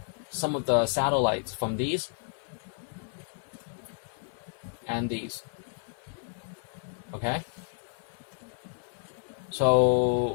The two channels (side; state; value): right; silent; 57 dB below the other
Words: some of the satellites from these and these, okay?